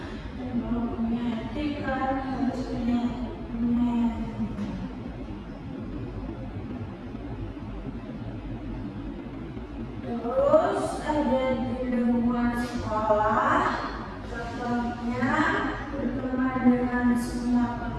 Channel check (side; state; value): both; identical; correlation 1.00